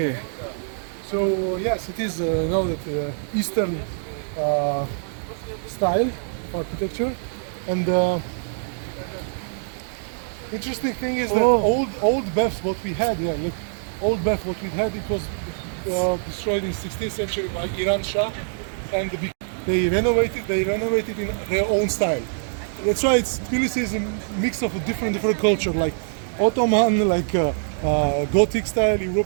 So yes, it is that Eastern style of architecture, and interesting thing is that old baths what we had, old bath what we had, it was destroyed in 16th century by Iran Shah, and they renovated in their own style. That's why Tbilisi is a mix of a different culture, like Ottoman, like Gothic style,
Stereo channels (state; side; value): silent; left; digital silence